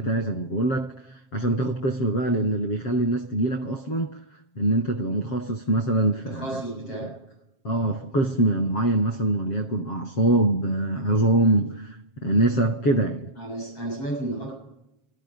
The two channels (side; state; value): right; late; 7.4 ms